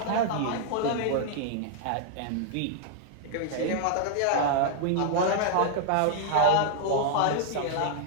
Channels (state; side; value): different; both; correlation 0.00